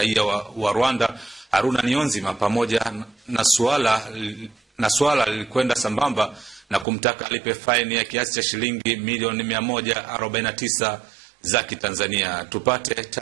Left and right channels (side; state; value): left; drops out; at 6.9 s